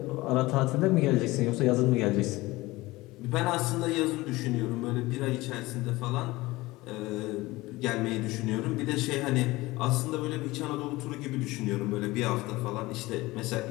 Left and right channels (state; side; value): quieter; right; 20.1 dB